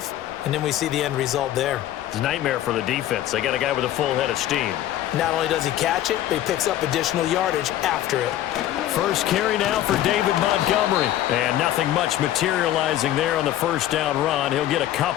and then we see the end result there. It's a nightmare for the defense. They got a guy with a full head of steam. Not only does he catch it, but he picks up additional yardage after it. First carry now for David Montgomery. And nothing much materializing there on the 1st down run. He'll get a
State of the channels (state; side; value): quieter; right; 13.0 dB